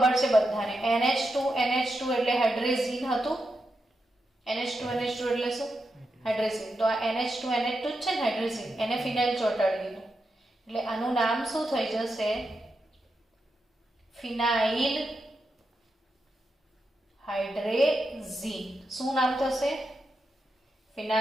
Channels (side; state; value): both; normal; correlation 0.87